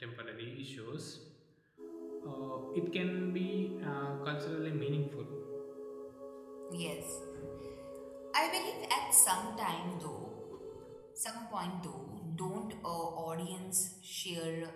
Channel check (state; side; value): identical; both; correlation 1.00